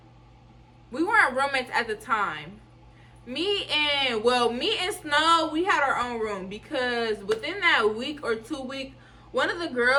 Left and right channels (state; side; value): identical; both; correlation 1.00